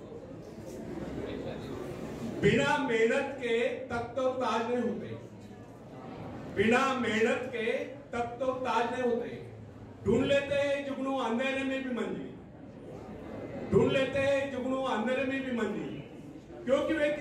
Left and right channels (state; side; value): identical; both; correlation 1.00